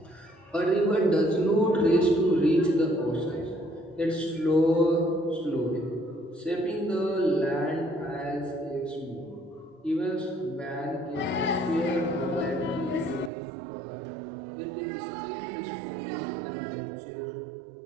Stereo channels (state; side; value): drops out; left; at 13.3 s